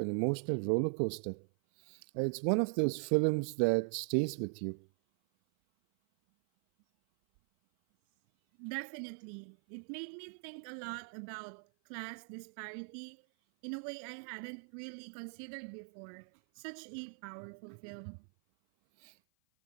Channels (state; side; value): silent; left; 52 dB below the other